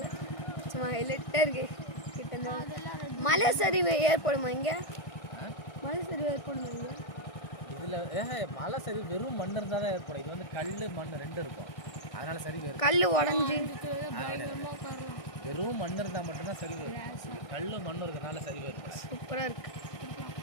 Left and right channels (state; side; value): late; right; 1.6 ms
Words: சும்மா ஹைலைட்டாக இருக்கு. கிட்ட மலை சரிவு ஏற்படுமா இங்கே? மலை சரிவு ஏற்படுமா இங்கே? இதில் மலை சரிவு வெறும் மண் இருந்தால் தான் ஏற்படும். இது வந்து கல் மண் 2 இருக்கும். அதனால சரிவு கல் உடஞ்சி வெறும் மண் இருந்தால் மட்டும்தான் சரிவு. கல் மண் இருக்கிறதுனால சரிவு இருக்கும். சூப்பராக இருக்கு.